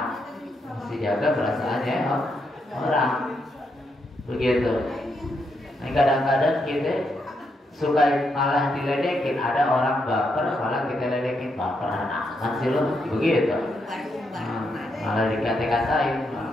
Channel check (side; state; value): both; normal; correlation 0.80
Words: orang, begitu. Nah kadang-kadang kita suka malah diledekin, ada orang baper malah kita ledekin, baperan amat sih lo, begitu. Malah dikata-katain,